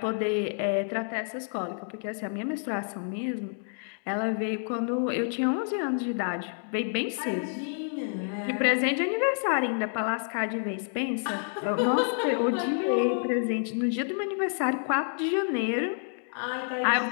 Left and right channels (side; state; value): right; silent; digital silence